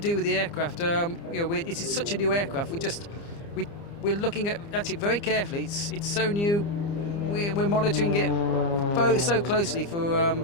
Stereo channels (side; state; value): right; late; 29 ms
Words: with the aircraft. It is such a new aircraft. We're looking at it very carefully. It's so new. We're monitoring it so closely for